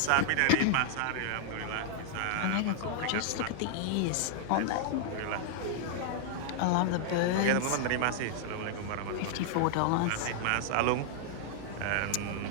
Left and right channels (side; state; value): both; different; correlation -0.01